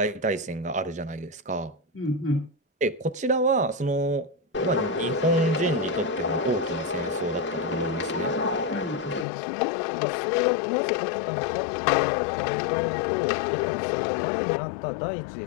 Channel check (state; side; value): drops out; right; at 9.2 s